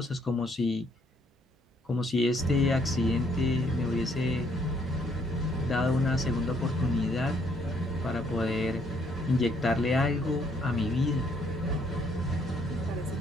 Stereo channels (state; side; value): normal; both; correlation 0.67